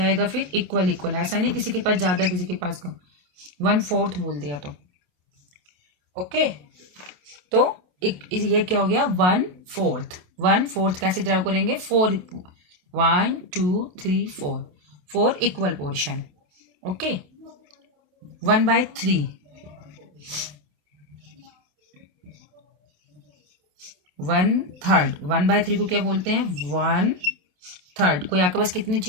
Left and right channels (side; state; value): left; late; 28 ms